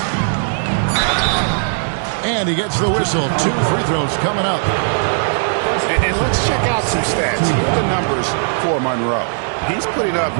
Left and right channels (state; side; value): silent; left; digital silence